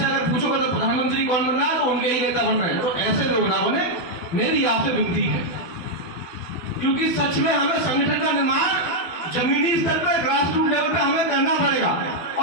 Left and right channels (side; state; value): right; late; 12 ms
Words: अगर पूछोगे तो प्रधानमंत्री कौन बन रहा है तो उनके ही नेता बन रहे हैं। तो ऐसे लोग ना बने, मेरी आपसे विनती है। क्योंकि सच में हमें संगठन का निर्माण जमीनी स्तर पर, ग्रास रूट लेवल पे हमें करना पड़ेगा,